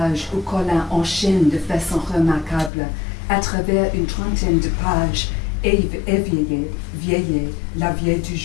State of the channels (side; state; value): right; drops out; at 2.7 s